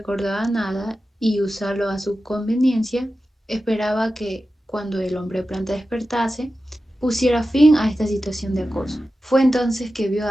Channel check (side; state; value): both; normal; correlation 0.93